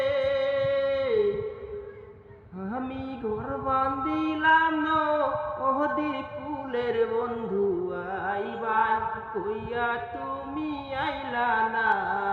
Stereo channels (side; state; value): both; identical; correlation 1.00